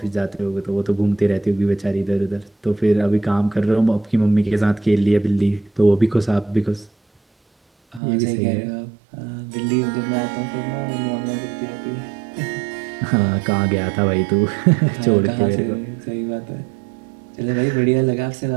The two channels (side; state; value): left; drops out; at 8.0 s